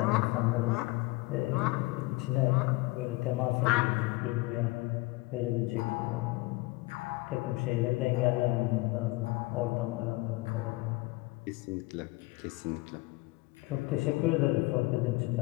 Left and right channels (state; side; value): quieter; right; 22.5 dB